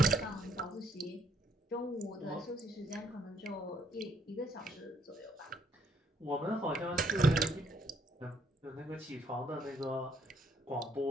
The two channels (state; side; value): normal; both; correlation 0.69